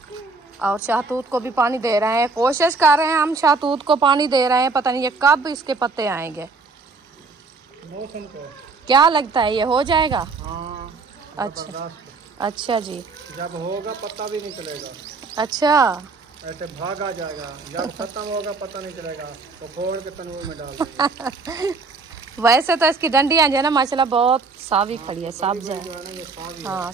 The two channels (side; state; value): left; quieter; 4.1 dB